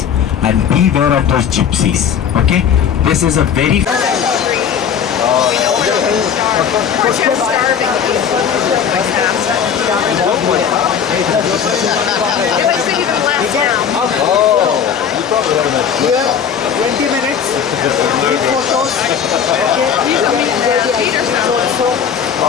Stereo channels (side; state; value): right; quieter; 7.8 dB